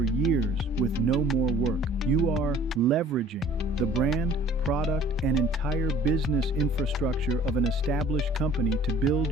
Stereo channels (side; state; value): both; normal; correlation 0.52